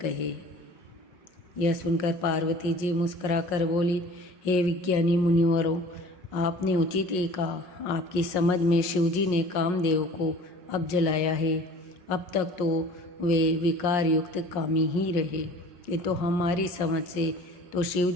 कहे। यह सुनकर पार्वती जी मुस्कुराकर बोली, हे विज्ञानी मुनिवरों, आपने उचित ही कहा। आपकी समझ में शिवजी ने कामदेव को अब जलाया है। अब तक तो वे विकार युक्त कामी ही रहे, किंतु हमारी समझ से तो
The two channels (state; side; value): late; right; 5.6 ms